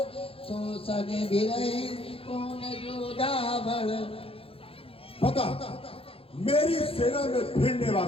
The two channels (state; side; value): late; right; 0.27 ms